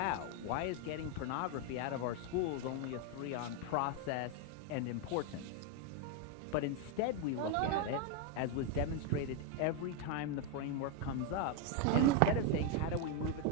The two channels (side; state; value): both; different; correlation 0.01